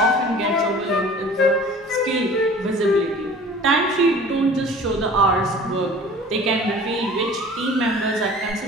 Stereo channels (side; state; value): both; normal; correlation 0.44